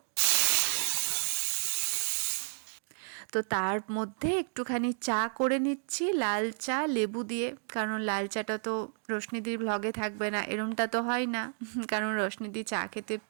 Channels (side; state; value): left; silent; 57 dB below the other